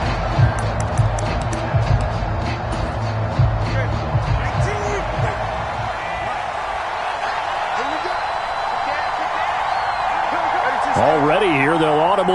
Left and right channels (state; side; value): identical; both; correlation 1.00